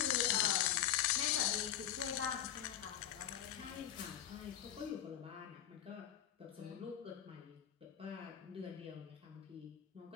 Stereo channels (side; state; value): right; quieter; 11.1 dB